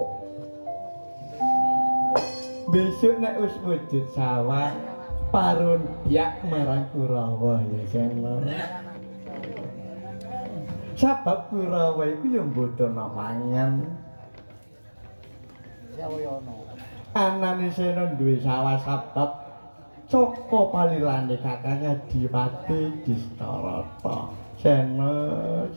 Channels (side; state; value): both; inverted; correlation -1.00